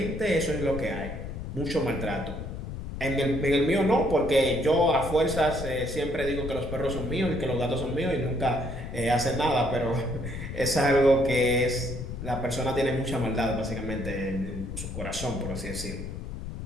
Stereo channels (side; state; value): left; noise; rumble, 8 dB below the sound